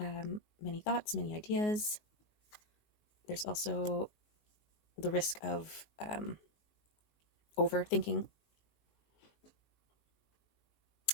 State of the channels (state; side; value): late; right; 19 ms